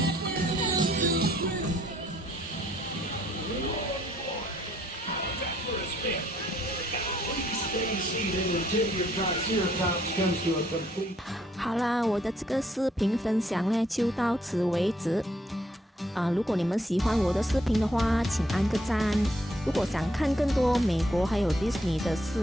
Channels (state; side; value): normal; both; correlation 0.68